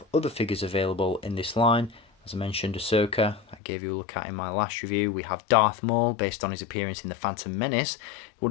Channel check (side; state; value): right; drops out; at 3.6 s